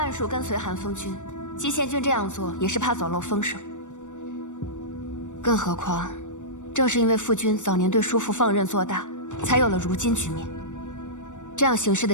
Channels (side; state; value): right; late; 0.85 ms